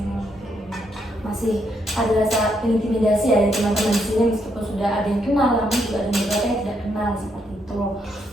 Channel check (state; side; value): normal; both; correlation 0.77